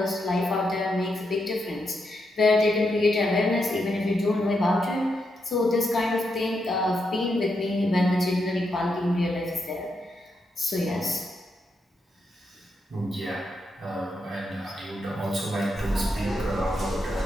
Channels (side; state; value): both; normal; correlation 0.83